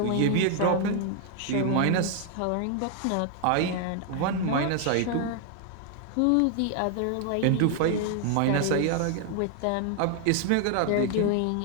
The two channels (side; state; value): both; different; correlation 0.00